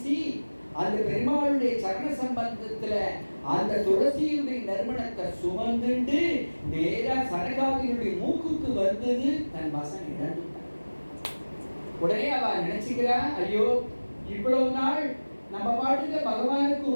அந்த பெருமாளுடைய சரண சம்பந்தத்துல அந்த துளசியுடைய நறுமணத்தை சுமந்துண்டு நேரா சனகாதியுடைய மூக்குக்கு வந்தது. தன் வசம் இழந்துட்டான். உடனே அவ நினைச்சுக்கிறா, ஐயோ இவ்வளவு நாள் நம்ம பாட்டுக்கு பகவானுக்கு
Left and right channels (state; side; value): inverted; both; correlation -1.00